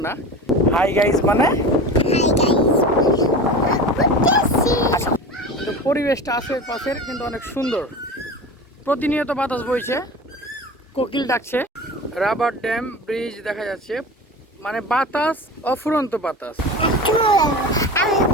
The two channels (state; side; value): normal; both; correlation 0.32